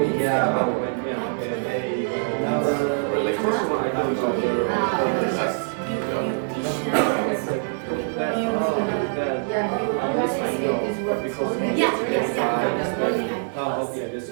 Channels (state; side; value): silent; left; digital silence